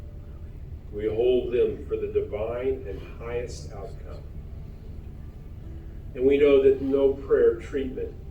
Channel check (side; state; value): both; identical; correlation 1.00